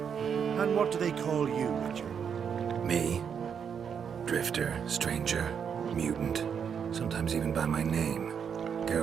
what do they call you, Witcher? Me? Drifter, stranger, mutant, sometimes even by my name,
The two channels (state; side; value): quieter; left; 7.3 dB